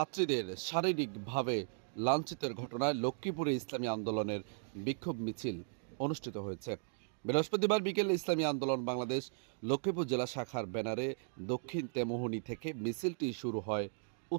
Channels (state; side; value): silent; left; digital silence